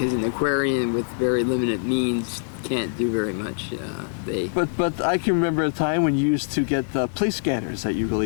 an aquarium with very limited means can't do very much. But I can remember a time when you used to get the police scanners that you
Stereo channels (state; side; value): silent; right; 61 dB below the other